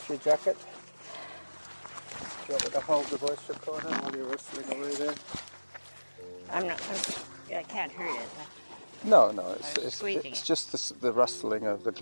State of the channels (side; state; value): both; inverted; correlation -1.00